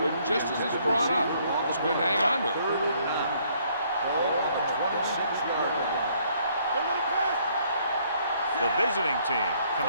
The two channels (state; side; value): inverted; both; correlation -0.65